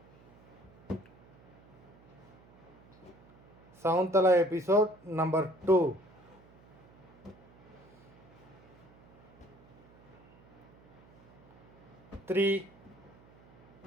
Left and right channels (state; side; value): noise; right; hum, 25 dB below the sound